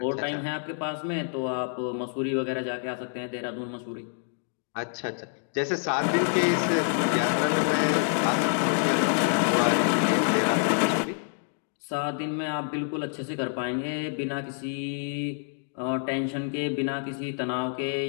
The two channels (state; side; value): silent; right; digital silence